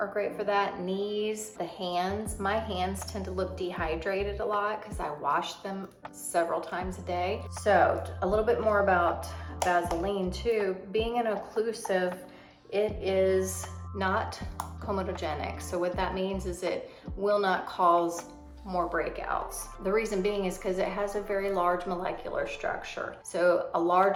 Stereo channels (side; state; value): both; identical; correlation 1.00